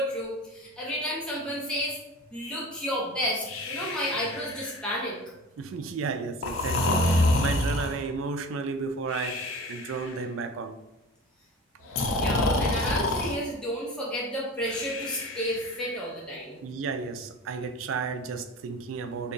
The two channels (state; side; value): normal; both; correlation 0.36